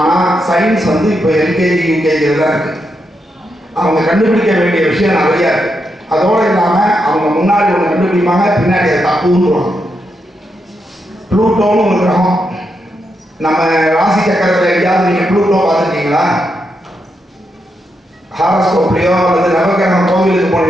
சயின்ஸ் இப்போ எல்கேஜி யூகேஜியில் தான் இருக்குது. அவங்க கண்டுபிடிக்க வேண்டிய விஷயம் நிறையா இருக்குது. அதோடு இல்லாமல் அவங்க முன்னாடி ஒன்று கண்டுபிடிப்பாங்க, பின்னாடி அதை தப்புன்னுவாங்க. ப்ளூட்டோன்னு ஒரு கிரகம். நம்ம ராசி சக்கரத்தில் எங்கேயாவது நீங்கள் ப்ளூட்டோ பார்த்துருக்கீங்களா? ஹாரஸ்கோப்லையோ அல்லது நவகிரகம் கோவிலுக்கு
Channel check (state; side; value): normal; both; correlation 0.83